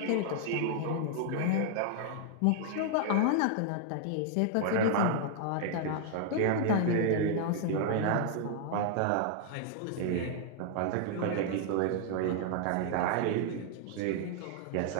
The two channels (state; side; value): different; both; correlation 0.00